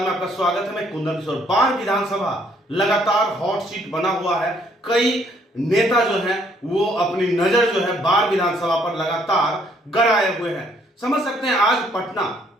आपका स्वागत है। मैं कुंदन किशोर। बाढ़ विधानसभा लगातार हॉट सीट बना हुआ है। कई नेता जो हैं वो अपनी नजर जो है बाढ़ विधानसभा पर लगातार गड़ाए हुए हैं। समझ सकते हैं आज पटना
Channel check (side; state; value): both; normal; correlation 0.65